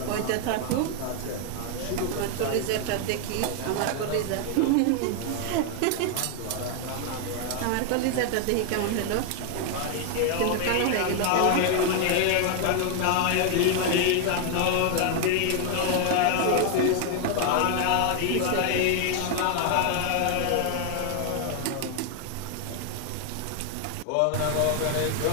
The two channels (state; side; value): different; both; correlation 0.00